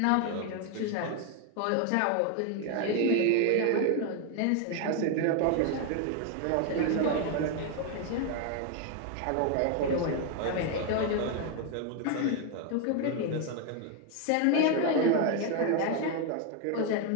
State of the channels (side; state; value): both; different; correlation 0.01